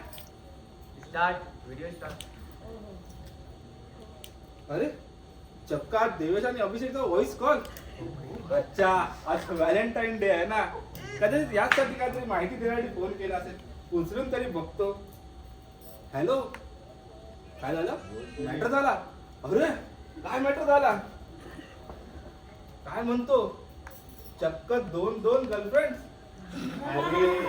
स्टार्ट व्हिडिओ स्टार्ट. अरे चक्का देवेश आणि अभिषेकचा व्हॉइस कॉल. अच्छा, आज व्हॅलेंटाईन डे आहे ना, कदाचित यासाठी काहीतरी माहिती देण्यासाठी फोन केला असेल. उचलून तरी बघतो. हॅलो, काय झालं? मॅटर झाला? अरे काय मॅटर झाला? काय म्हणतो? चक्क 2 गर्लफ्रेंड?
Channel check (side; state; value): both; identical; correlation 1.00